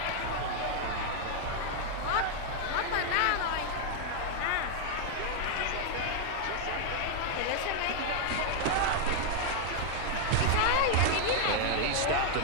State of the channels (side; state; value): both; different; correlation 0.00